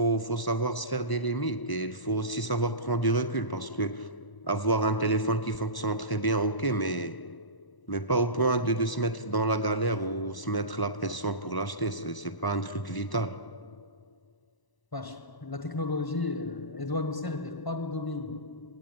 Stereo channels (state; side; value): late; right; 1.0 ms